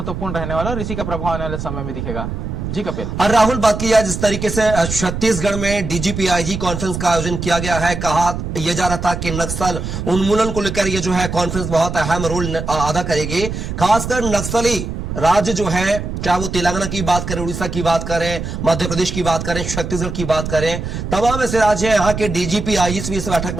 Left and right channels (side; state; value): right; noise; rumble, 5 dB below the sound